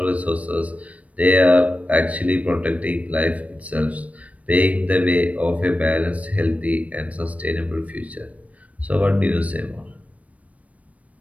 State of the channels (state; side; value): late; left; 0.067 ms